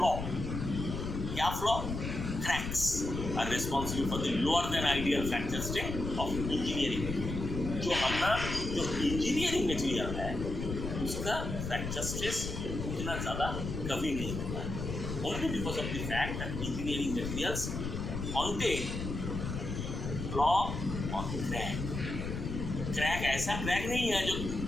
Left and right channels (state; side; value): noise; left; rumble, 4 dB below the sound